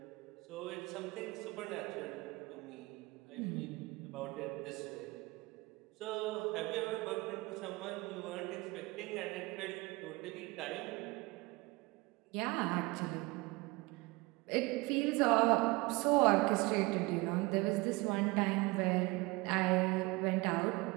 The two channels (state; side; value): quieter; left; 23.5 dB